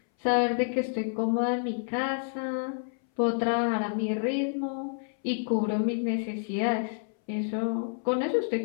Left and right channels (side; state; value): right; silent; 59 dB below the other